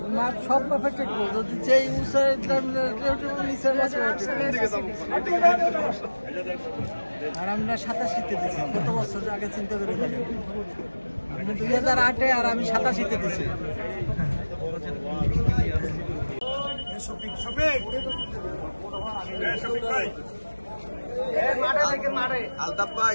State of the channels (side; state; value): both; inverted; correlation -1.00